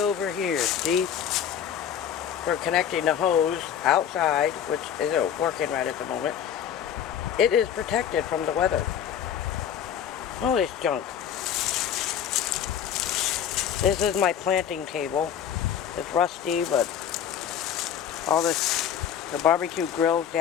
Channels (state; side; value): quieter; right; 9.1 dB